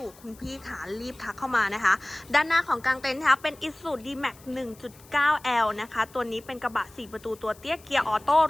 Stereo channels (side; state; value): left; noise; hiss, 24 dB below the sound